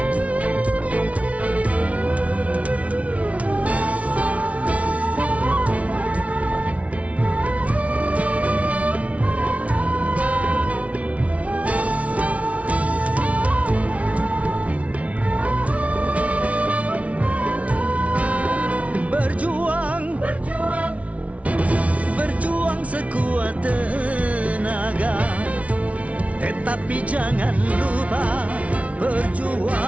Tetapi jangan lupa,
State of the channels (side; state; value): left; late; 0.065 ms